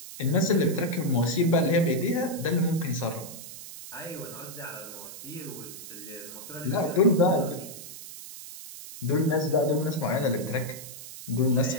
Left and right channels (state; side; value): noise; right; hiss, 13 dB below the sound